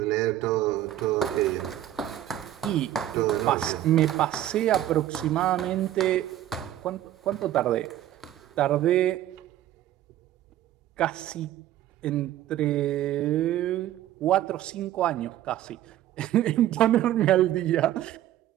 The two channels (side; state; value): left; quieter; 12.9 dB